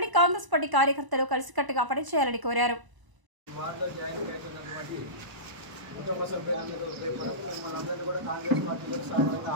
కాంగ్రెస్ పార్టీ కార్యకర్తలు కలిసికట్టుగా పనిచేయాలని కోరారు. కుటుంబ సభ్యులందరూ రేపు మిమ్మల్ని అందరినీ కూడా కాంగ్రెస్ పార్టీలో సాధారణంగా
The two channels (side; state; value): left; late; 1.0 ms